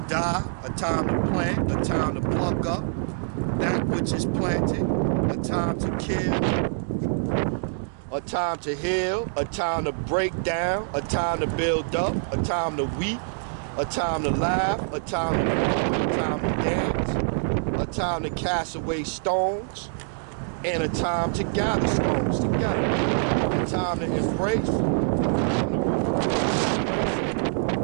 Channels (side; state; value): left; silent; digital silence